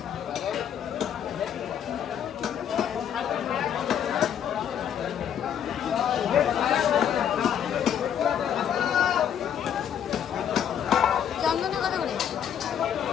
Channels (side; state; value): right; quieter; 9.0 dB